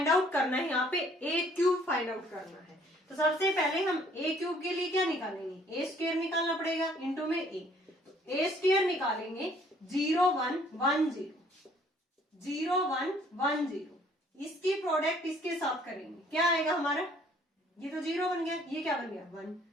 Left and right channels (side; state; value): both; normal; correlation 0.60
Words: आउट करना है यहाँ पे AQ फाइंड आउट करना है। तो सबसे पहले हम AQ के लिए क्या निकालेंगे, A स्क्वायर निकालना पड़ेगा इंटू में A। तो A स्क्वायर निकालेंगे 0 1 1 0 0 1 1 0, इसकी प्रोडक्ट इसके साथ करेंगे, क्या आएगा हमारा, ये तो 0 बन गया, ये क्या बन गया 1,